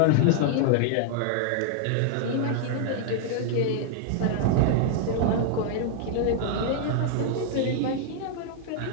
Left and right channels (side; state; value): both; different; correlation -0.01